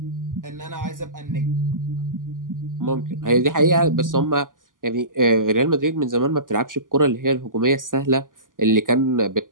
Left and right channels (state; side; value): late; left; 0.89 ms